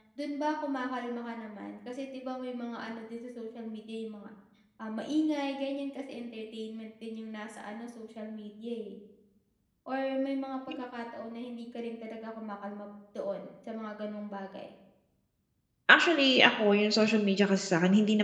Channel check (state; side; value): identical; both; correlation 1.00